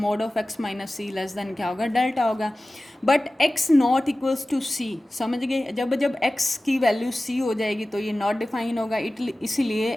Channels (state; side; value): normal; both; correlation 0.97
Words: of x minus c less than क्या होगा, डेल्टा होगा, but x not equals to c, समझ गए। जब एक्स की वैल्यू सी हो जाएगी तो ये नॉट डिफाइन होगा, इसीलिए